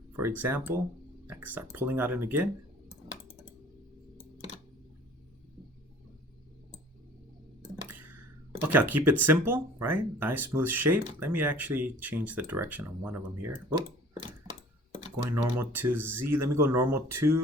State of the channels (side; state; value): both; normal; correlation 0.49